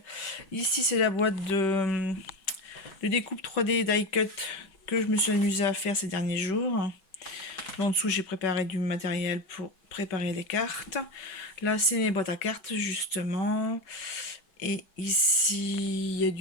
Ici, c'est la boîte de découpe 3D die cut que je me suis amusée à faire ces derniers jours. En dessous, j'ai préparé du matériel pour préparer les cartes. Là, c'est les boîtes à cartes, justement. Et ici, il y a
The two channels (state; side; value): late; right; 5.3 ms